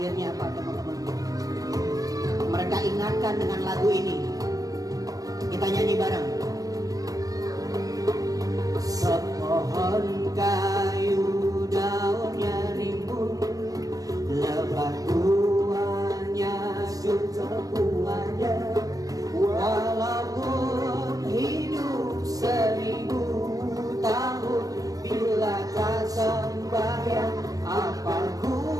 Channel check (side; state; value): left; late; 0.17 ms